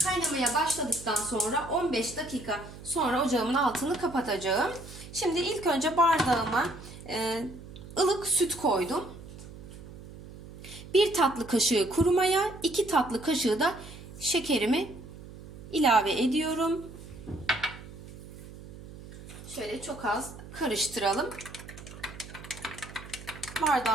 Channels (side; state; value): right; noise; hum, 15 dB below the sound